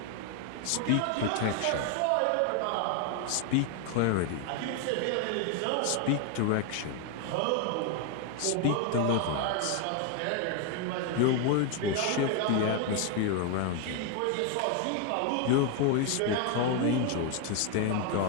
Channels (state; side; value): different; both; correlation 0.01